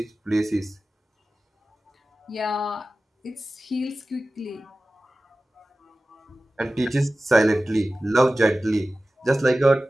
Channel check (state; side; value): normal; both; correlation 0.96